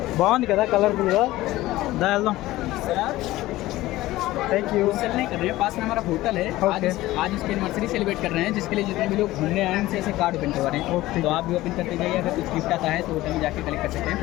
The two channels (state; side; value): quieter; right; 17.0 dB